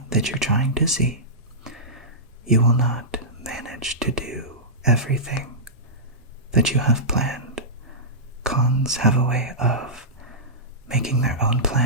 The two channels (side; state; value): both; normal; correlation -0.15